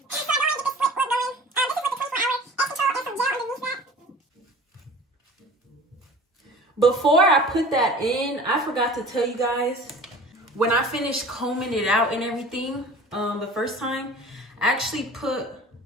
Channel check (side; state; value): both; normal; correlation 0.42